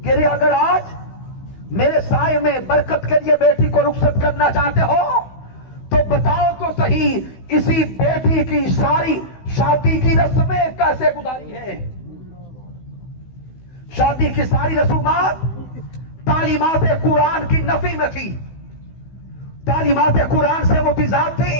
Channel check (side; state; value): right; late; 16 ms